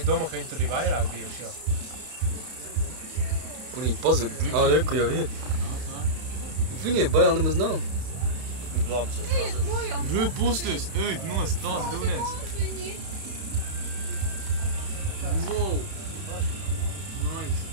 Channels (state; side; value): late; left; 32 ms